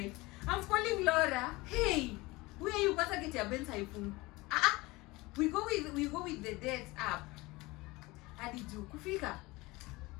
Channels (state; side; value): quieter; right; 22.1 dB